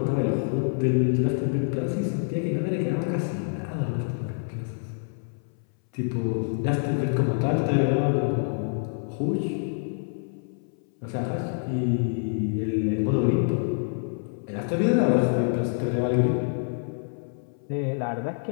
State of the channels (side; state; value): right; silent; 60 dB below the other